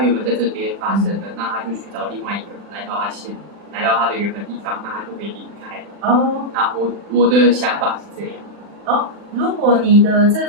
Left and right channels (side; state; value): left; late; 40 ms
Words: 本在这边发生的，那他就去找另外一个人来到他的原本地方，那他就可以离开。那我的想法是这样。如果你的这